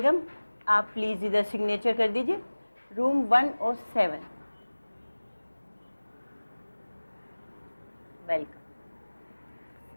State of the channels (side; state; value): both; inverted; correlation -1.00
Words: आप प्लीज़ इधर सिग्नेचर कर दीजिए, रूम 107। वेलकम।